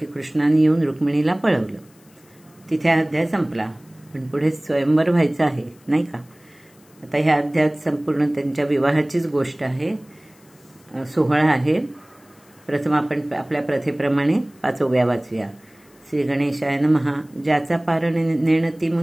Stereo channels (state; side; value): noise; left; hiss, 30 dB below the sound